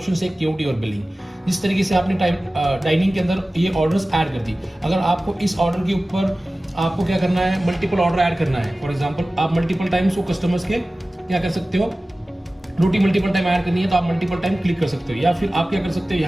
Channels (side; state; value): both; normal; correlation 0.97